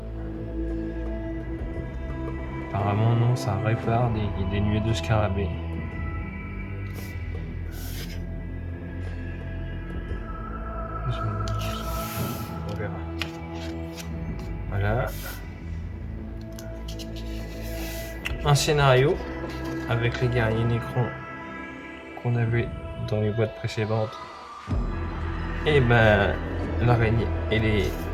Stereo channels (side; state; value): both; identical; correlation 1.00